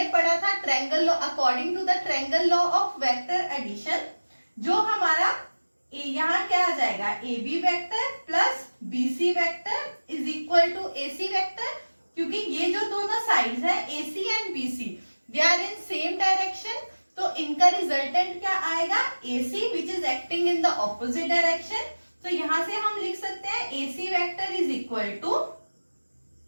पढ़ा था triangle law, according to the triangle law of vector addition, जो हमारा यहाँ क्या आ जाएगा? AB vector plus BC vector is equal to AC vector. क्योंकि ये जो दोनों साइड्स हैं AC and BC they are in same direction, तो इनका रिजल्टेंट क्या आएगा? AC which is acting in the opposite direction. तो यहां से हम लिख सकते हैं AC vector is equal to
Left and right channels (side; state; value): both; inverted; correlation -1.00